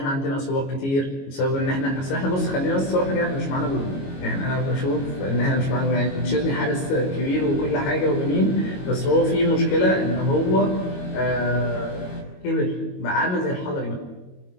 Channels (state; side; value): late; right; 22 ms